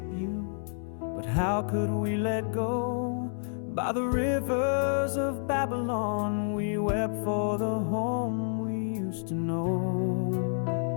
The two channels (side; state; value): right; silent; digital silence